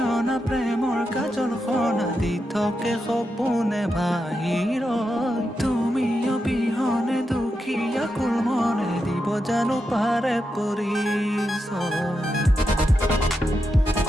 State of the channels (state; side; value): normal; both; correlation 0.86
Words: প্ৰেমৰ কাজল সনা দি থাকে সপোনে বাহিৰ তুমি অবিহনে দুখীয়া কুল মনে দিব জানো পাৰে পৰিচয়